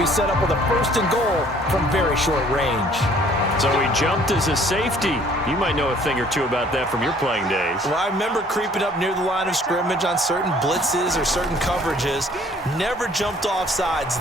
set up with a 1st and goal from very short range. So he jumped as a safety. You might know a thing or two about that from your playing days. Well, I remember creeping up near the line of scrimmage on certain blitzes or certain coverages. Never jumped off sides,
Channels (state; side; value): normal; both; correlation 0.57